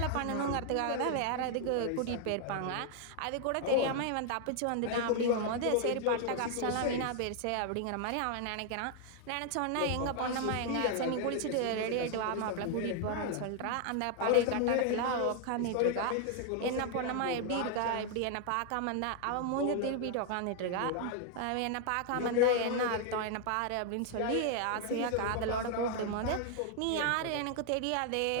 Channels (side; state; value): both; different; correlation 0.00